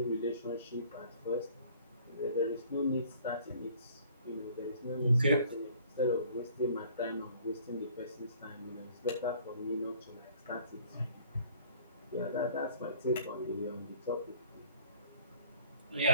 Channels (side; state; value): both; inverted; correlation -0.55